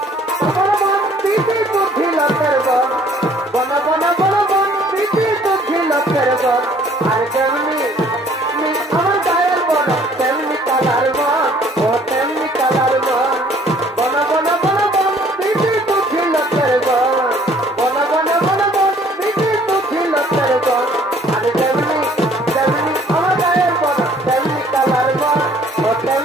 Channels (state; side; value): normal; both; correlation 0.58